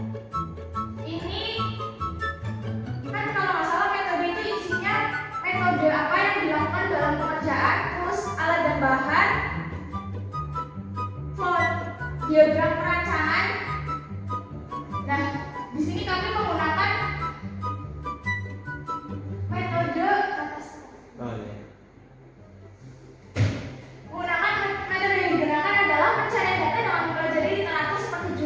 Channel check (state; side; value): identical; both; correlation 1.00